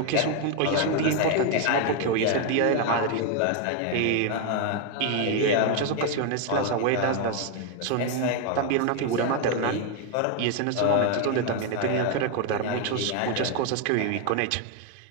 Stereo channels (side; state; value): both; different; correlation 0.01